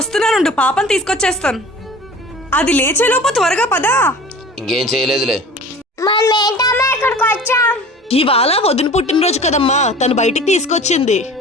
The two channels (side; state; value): both; normal; correlation 0.41